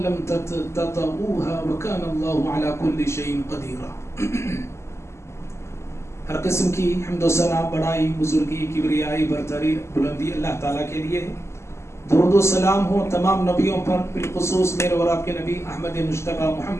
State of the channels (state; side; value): late; right; 0.13 ms